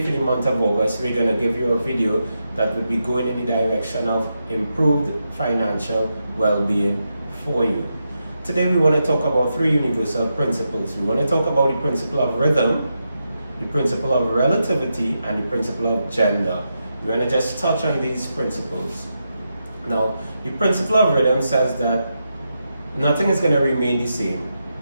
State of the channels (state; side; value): inverted; both; correlation -0.86